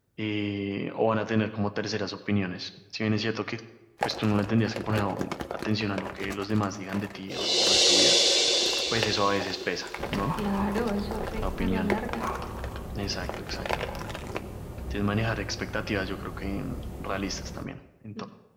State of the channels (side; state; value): both; identical; correlation 1.00